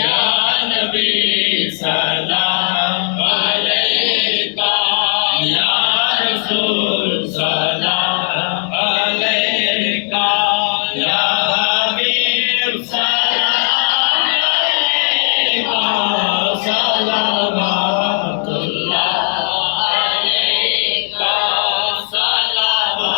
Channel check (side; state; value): right; silent; 55 dB below the other